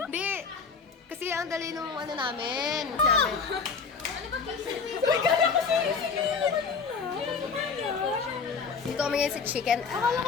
Hindi. Kasi ang dali nung ano namin. Dito kami ngayon sa chicken. Akala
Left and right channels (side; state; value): right; quieter; 5.4 dB